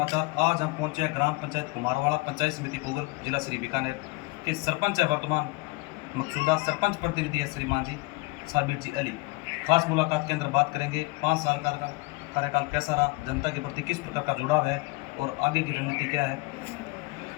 आज हम पहुंचे हैं ग्राम पंचायत कुमारवाड़ा, पंचायत समिति पुगल, जिला श्री बीकानेर के सरपंच है वर्तमान मकसूदा सरपंच प्रतिनिधि है श्रीमान जी साबिर जी अली। खास मुलाकात के अंदर बात करेंगे 5 साल का कार्यकाल कैसा रहा, जनता के प्रति किस प्रकार का जुड़ाव है और आगे की रणनीति क्या है।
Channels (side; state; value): right; quieter; 24.1 dB